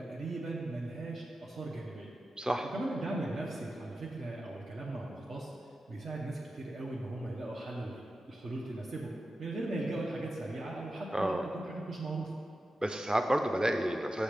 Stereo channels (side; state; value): both; normal; correlation 0.91